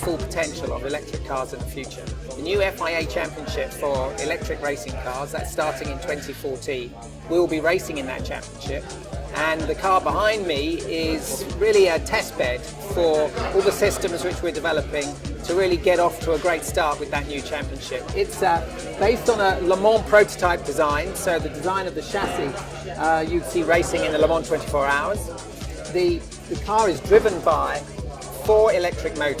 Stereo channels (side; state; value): both; identical; correlation 1.00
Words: potential of electric cars in the future. The new FIA Championship for electric racing cars, that's starting in 2014. We'll be racing in that championship. And the car behind me is really a test bed for all the systems which we're developing to really get off to a great start with that new championship. It's based on a Le Mans prototype design, so the design of the chassis you'd see racing in the Le Mans 24 hours. The car is driven by 4 electric